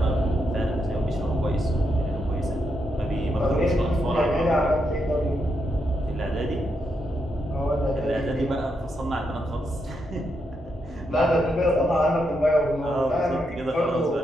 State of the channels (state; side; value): normal; both; correlation 0.82